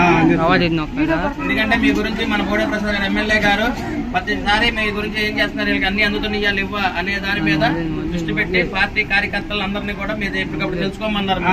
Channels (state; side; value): identical; both; correlation 1.00